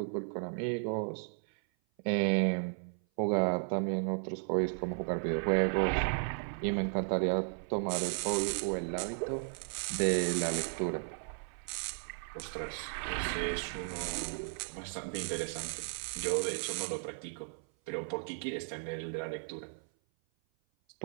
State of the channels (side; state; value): left; silent; 55 dB below the other